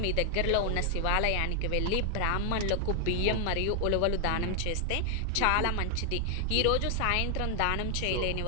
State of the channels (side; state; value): both; different; correlation 0.00